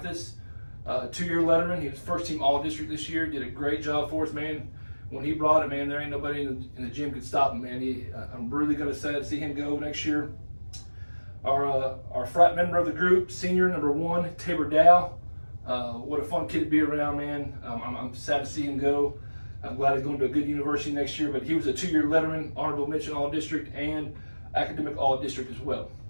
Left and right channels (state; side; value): inverted; both; correlation -1.00